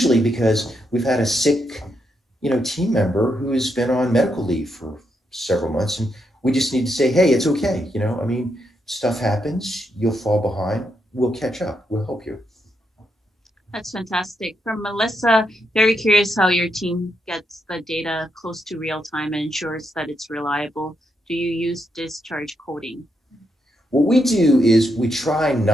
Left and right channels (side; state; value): both; normal; correlation 0.81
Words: because we've had a sick team member who has been on medical leave for several months, and we just need to say, hey, it's okay. I mean, stuff happens. You'll fall behind. We'll catch up. We'll help you. That's fantastic. From Melissa, very curious how your team gets the data close to real time and ensures that it's reliable. Do you use discharge coding? What we do is we try